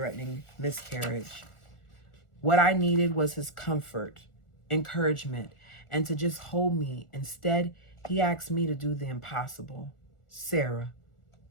miscarriage. What I needed was his comfort, encouragement, and to just hold me. Instead, he asked me to do the impossible. Sarah,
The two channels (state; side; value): late; right; 1.4 ms